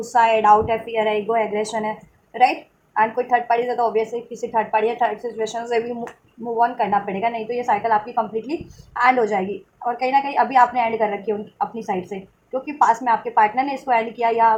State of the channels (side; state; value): both; identical; correlation 1.00